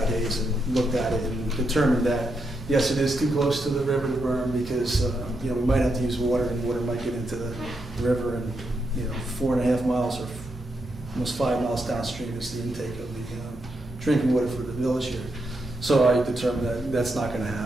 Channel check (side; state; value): both; normal; correlation 0.82